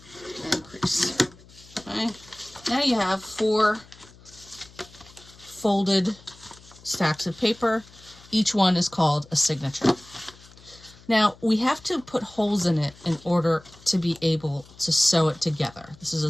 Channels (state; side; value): noise; left; hum, 23 dB below the sound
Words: and crease. Okay, now you have 4 folded stacks of paper. Each one is called a signature. Now, we have to put holes in it in order to be able to sew it together. This is